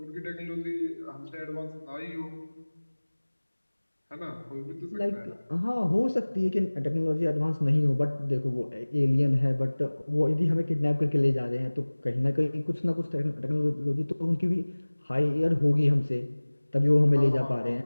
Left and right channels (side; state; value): both; inverted; correlation -1.00